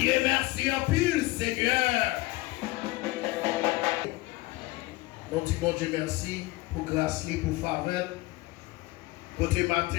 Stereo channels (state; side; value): quieter; right; 20.5 dB